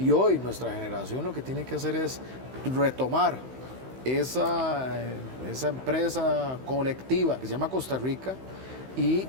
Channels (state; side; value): late; left; 16 ms